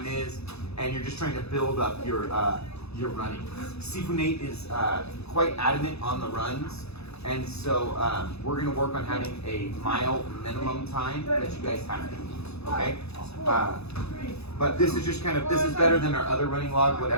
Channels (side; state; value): right; late; 0.79 ms